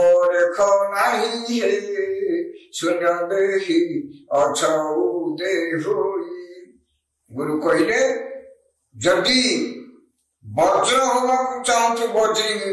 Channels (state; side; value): identical; both; correlation 1.00